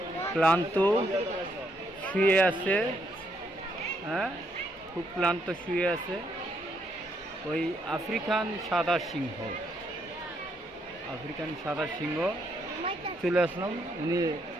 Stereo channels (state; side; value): normal; both; correlation 0.74